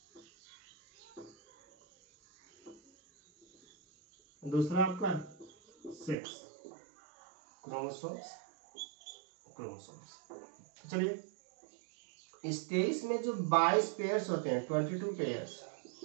दूसरा आपका सेक्स क्रोमोसोम्स। चलिए इस 23 में जो 22 पेयर्स होते हैं 22 पेयर्स,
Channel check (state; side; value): drops out; left; at 6.2 s